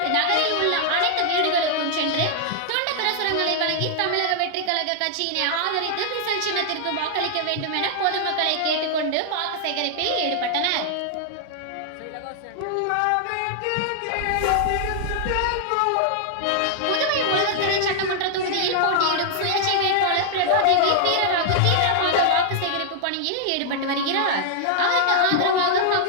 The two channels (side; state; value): both; different; correlation -0.01